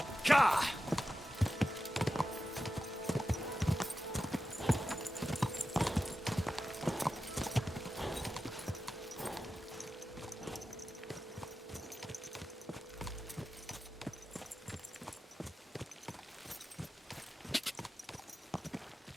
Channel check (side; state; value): both; normal; correlation 0.92